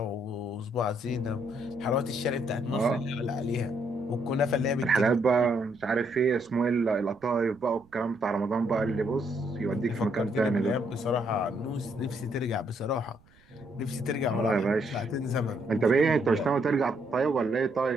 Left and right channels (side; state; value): right; noise; rumble, 29 dB below the sound